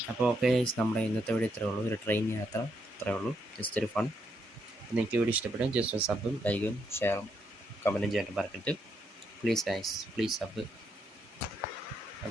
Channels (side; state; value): both; normal; correlation 0.77